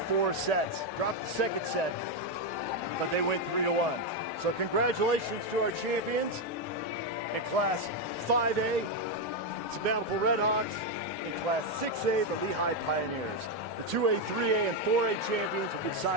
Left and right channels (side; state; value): both; normal; correlation 0.05